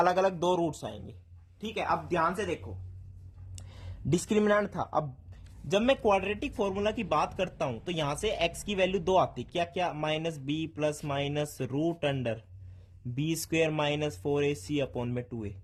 अलग 2 रूट्स आएंगे। ठीक है, अब ध्यान से देखो, डिस्क्रिमिनेंट था, अब जब मैं क्वाड्रेटिक फॉर्मूला की बात करता हूं तो यहां से x की वैल्यू 2 आती, क्या क्या, minus b plus minus root under b² minus 4ac upon में 2a।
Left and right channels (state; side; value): identical; both; correlation 1.00